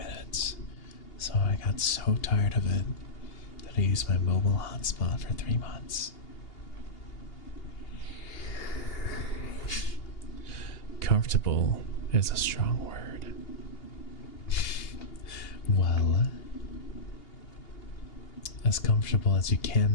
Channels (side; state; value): right; late; 2.8 ms